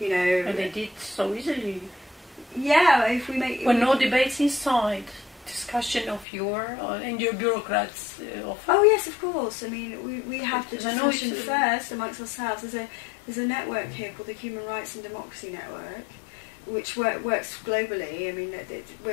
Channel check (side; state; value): right; drops out; at 6.2 s